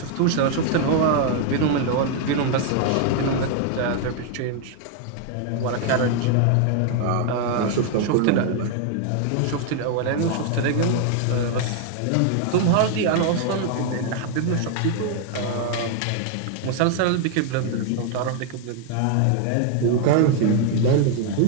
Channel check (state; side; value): different; both; correlation 0.00